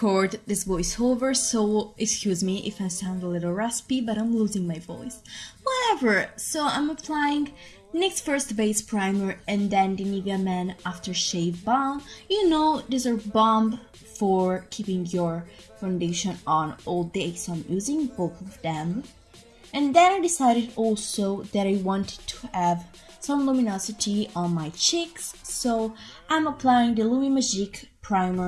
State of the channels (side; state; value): both; identical; correlation 1.00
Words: this voiceover, so excuse me if I sound a little raspy, but I'm losing my voice. Whatever, so I'm applying NYX First Base Primer and then the NIVEA Men Aftershave Balm. You know, these are balm for keeping your foundation on all day, so I'm using both of them. And then I decided also that I wanted to have some luminosity on my cheeks, so I'm applying the LUMI MAGIQUE